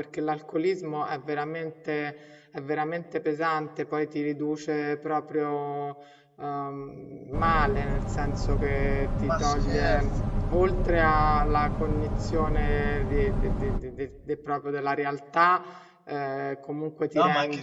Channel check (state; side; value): identical; both; correlation 1.00